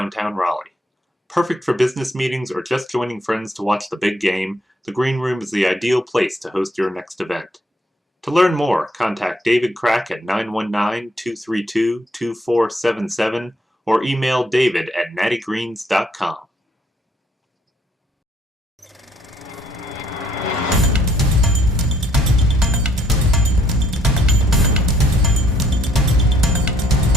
Raleigh. Perfect for business meetings or just joining friends to watch the big game, the Green Room is the ideal place to host your next event. To learn more, contact David Crack at 919-232-2477 or email david at nattygreens.com.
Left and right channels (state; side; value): normal; both; correlation 0.67